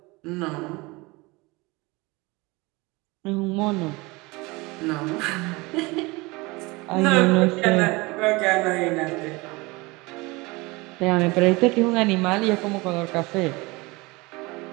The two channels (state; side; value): quieter; left; 24.0 dB